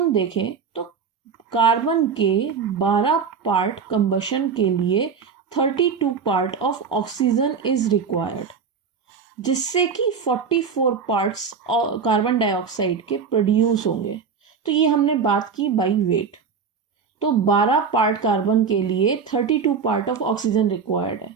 देखें तो कार्बन के 12 पार्ट कंबशन के लिए 32 part of oxygen is required, जिससे कि 44 पार्ट्स कार्बन डाइऑक्साइड के प्रोड्यूस होंगे. तो ये हमने बात की बाई वेट. तो 12 पार्ट कार्बन के लिए 32 पार्ट ऑफ ऑक्सीजन रिक्वायर्ड है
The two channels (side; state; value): left; quieter; 6.0 dB